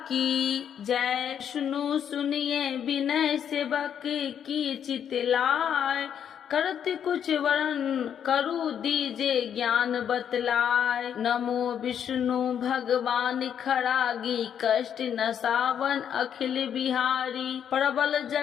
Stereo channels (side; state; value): right; quieter; 8.7 dB